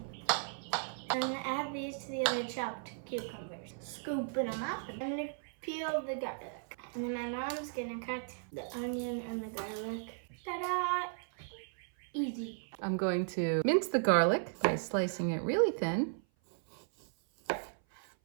I'm going to add these to the other chopped cucumbers. Scooping them up. I'm going to peel the garlic. And then my mom's going to cut the onion and the garlic. Ta-da! Easy. I'm going to mince the garlic by slicing it really thin.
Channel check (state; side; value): silent; left; 54 dB below the other